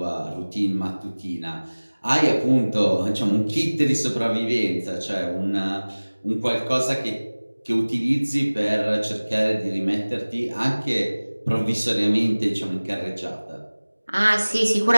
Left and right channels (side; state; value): both; inverted; correlation -1.00